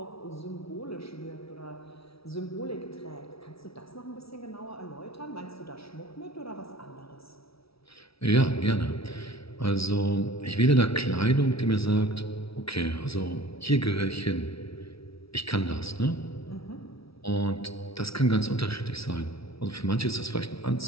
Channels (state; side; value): late; right; 0.76 ms